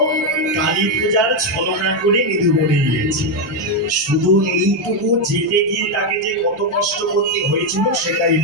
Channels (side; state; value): right; noise; rumble, 30 dB below the sound